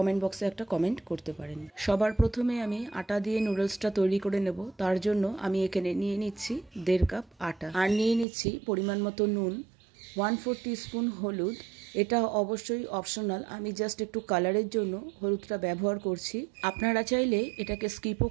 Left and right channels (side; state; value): left; drops out; at 8.2 s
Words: বক্সে একটা কমেন্ট করতে পারেন। সবার প্রথমে আমি আটা দিয়ে নুডলসটা তৈরি করে নেব। তার জন্য আমি এখানে নিয়ে নিচ্ছি 1.5 কাপ আটা, আর নিয়ে নিচ্ছি পরিমাণ মতো নুন, 1/4 টিস্পুন হলুদ। এটা অবশ্যই অপশনাল, আমি জাস্ট একটু কালারের জন্য হলুদটা ব্যবহার করছি, আপনারা চাইলে এটাকে স্কিপও